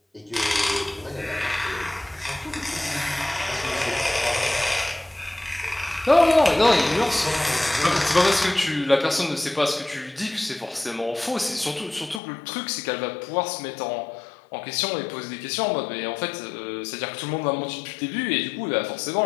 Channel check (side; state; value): right; drops out; at 12.2 s